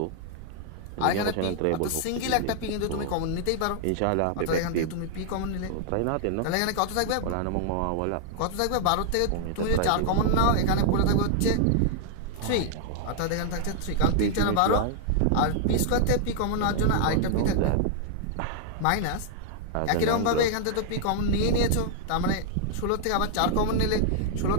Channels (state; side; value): different; both; correlation -0.01